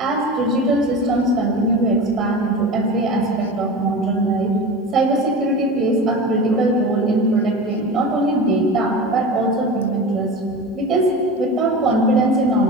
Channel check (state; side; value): normal; both; correlation 0.30